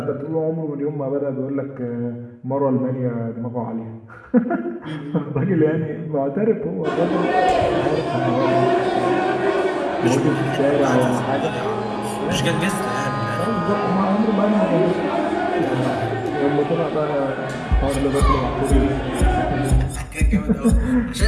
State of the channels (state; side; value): identical; both; correlation 1.00